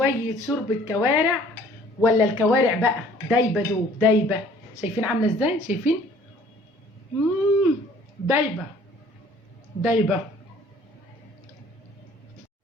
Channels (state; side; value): normal; both; correlation 0.55